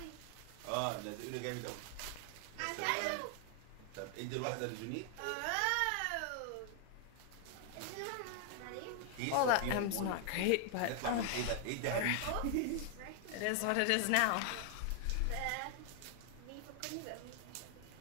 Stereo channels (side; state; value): both; different; correlation 0.00